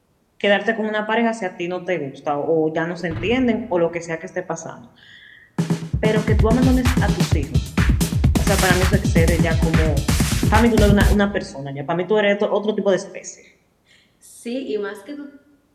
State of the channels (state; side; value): identical; both; correlation 1.00